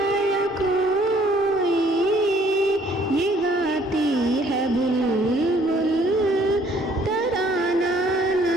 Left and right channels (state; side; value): normal; both; correlation 0.60